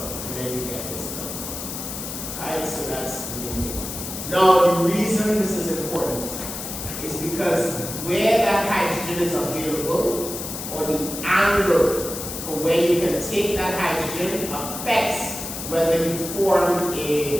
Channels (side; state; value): left; noise; hiss, 7 dB below the sound